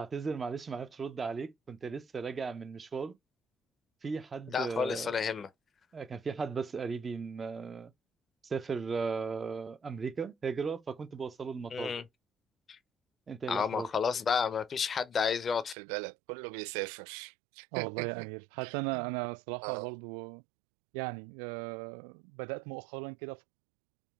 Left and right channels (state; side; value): drops out; left; at 15.8 s